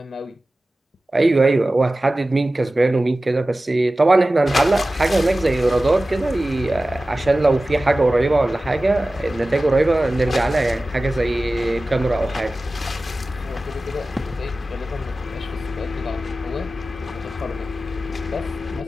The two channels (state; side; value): normal; both; correlation 0.96